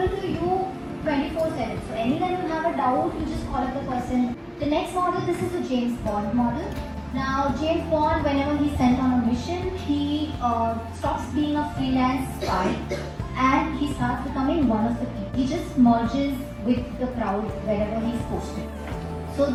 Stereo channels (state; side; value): identical; both; correlation 1.00